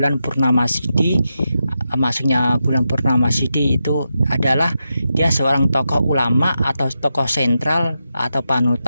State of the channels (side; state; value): both; inverted; correlation -0.88